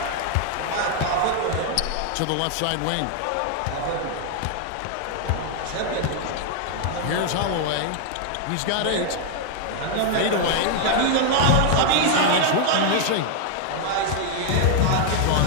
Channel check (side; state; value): both; different; correlation 0.00